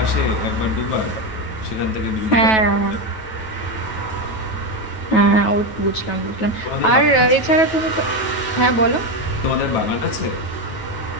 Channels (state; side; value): late; right; 9.2 ms